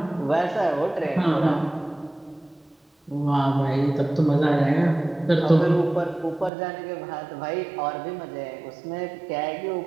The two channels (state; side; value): drops out; left; at 6.5 s